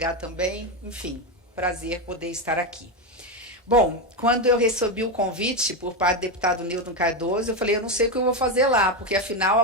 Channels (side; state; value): both; normal; correlation 0.11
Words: também. Enfim, prazer poder estar aqui. Bom, quando eu recebi o convite por parte do deputado Newton Cardoso, eu falei, eu não sei o que eu vou fazer lá, porque afinal